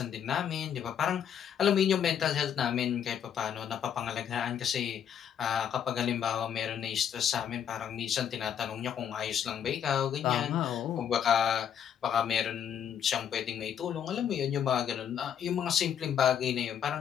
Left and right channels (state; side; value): quieter; right; 8.7 dB